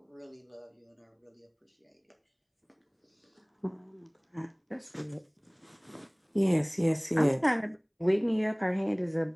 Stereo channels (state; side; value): identical; both; correlation 1.00